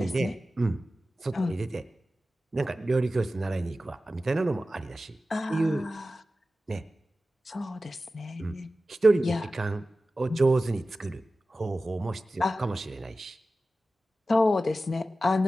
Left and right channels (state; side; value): normal; both; correlation 0.94